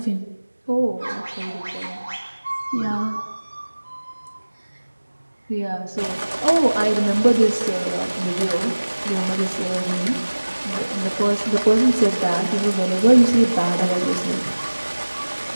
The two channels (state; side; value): inverted; both; correlation -1.00